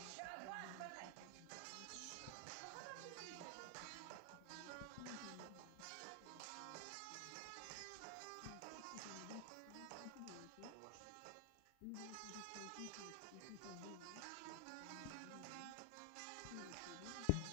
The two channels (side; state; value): both; different; correlation 0.00